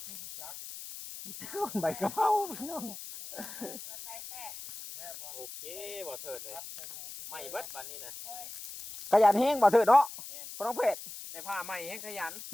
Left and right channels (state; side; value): noise; left; hiss, 11 dB below the sound